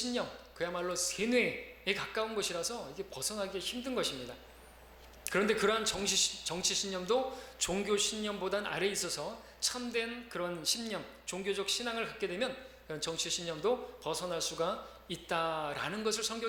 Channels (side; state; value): both; identical; correlation 1.00